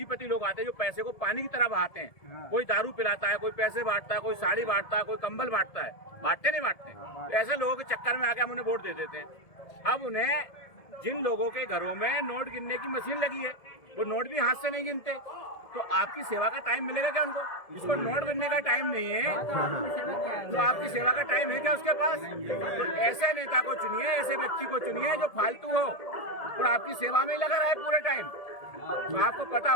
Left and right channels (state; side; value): late; right; 1.8 ms